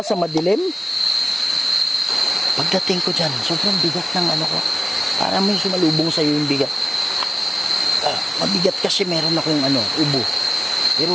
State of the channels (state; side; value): normal; both; correlation 0.96